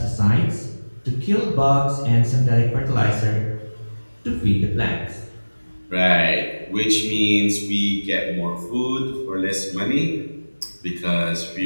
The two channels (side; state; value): both; inverted; correlation -1.00